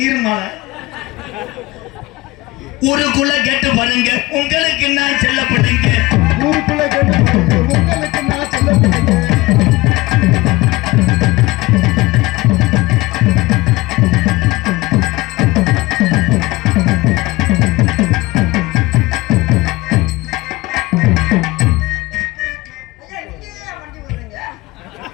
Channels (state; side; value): quieter; right; 20.6 dB